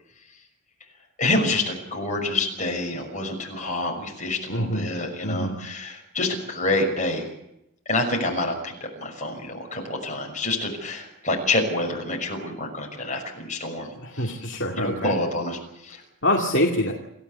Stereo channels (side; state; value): both; normal; correlation 0.10